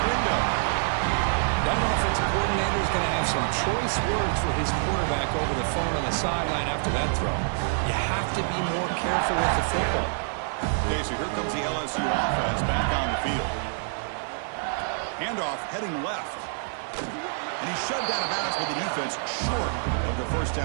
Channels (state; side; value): silent; left; 60 dB below the other